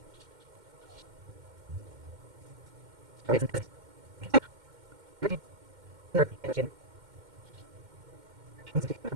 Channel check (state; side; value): late; left; 2.1 ms